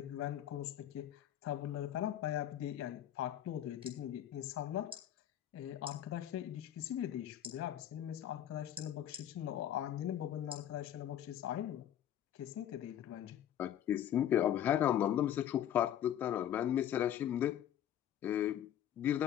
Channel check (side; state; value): right; quieter; 10.9 dB